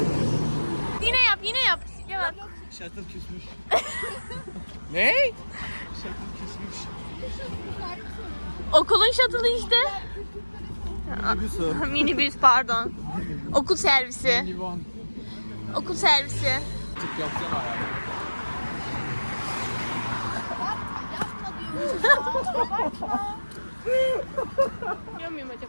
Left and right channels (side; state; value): both; inverted; correlation -1.00